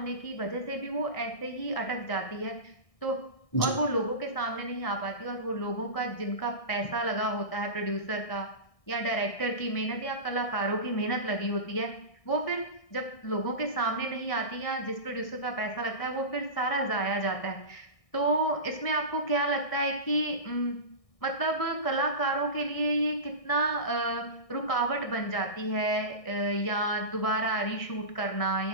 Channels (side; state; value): right; late; 1.6 ms